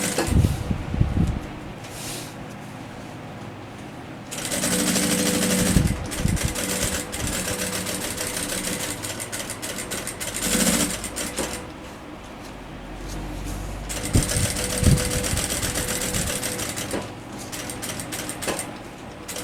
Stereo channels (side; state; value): both; identical; correlation 1.00